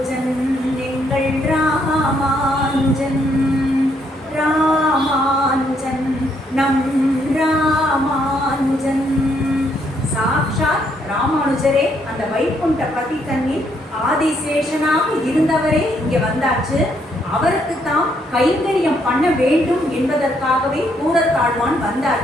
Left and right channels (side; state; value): both; normal; correlation 0.72